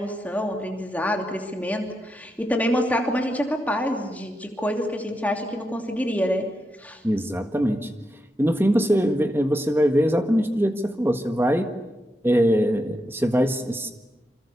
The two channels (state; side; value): normal; both; correlation 0.85